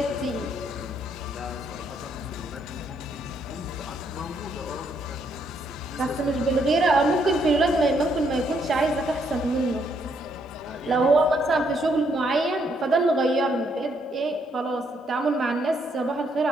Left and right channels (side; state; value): both; normal; correlation 0.73